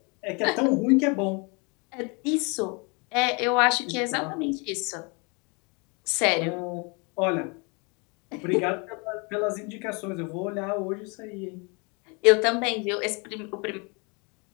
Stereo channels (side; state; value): right; quieter; 31.5 dB